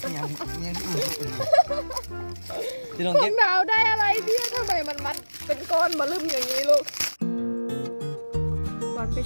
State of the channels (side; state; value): both; inverted; correlation -1.00